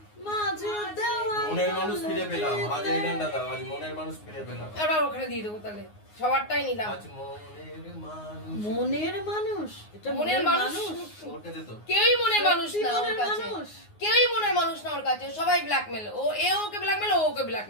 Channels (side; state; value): right; late; 9.6 ms